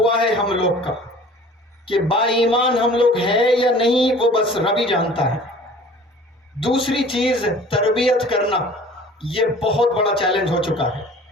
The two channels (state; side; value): normal; both; correlation 0.47